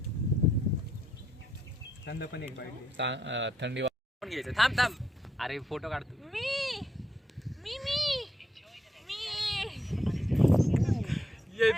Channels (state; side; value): normal; both; correlation 0.78